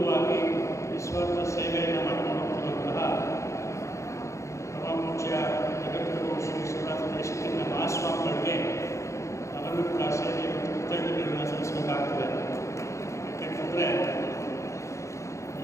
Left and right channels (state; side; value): late; right; 0.14 ms